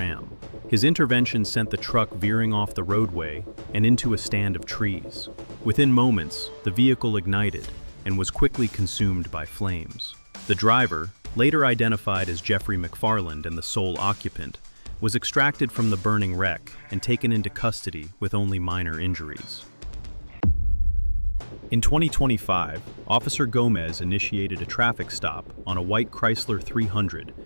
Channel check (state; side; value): inverted; both; correlation -1.00